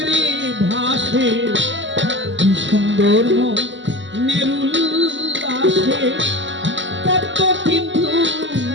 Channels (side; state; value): left; late; 0.54 ms